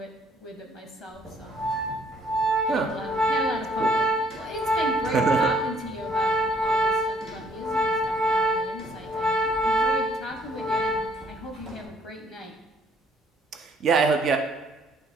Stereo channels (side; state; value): both; normal; correlation 0.63